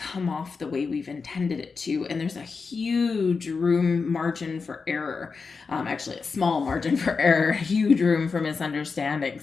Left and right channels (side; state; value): right; quieter; 4.8 dB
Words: off the way we've intended it to, and there's a huge margin for error. Actually, a small margin for error, huge room for